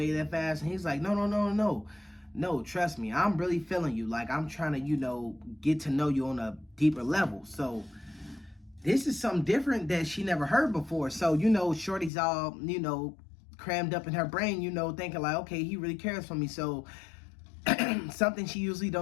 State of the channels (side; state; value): right; drops out; at 12.1 s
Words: that fast. And he's like, no, trust me, I'm really feeling you. Like, I'm trying to, you know, get to know you on a deeper level. So this is something different that she never heard before. So, you know, Shorty's all, you know, crammed up in her brain, you know, thinking like, okay, he really cares for me. So something she usually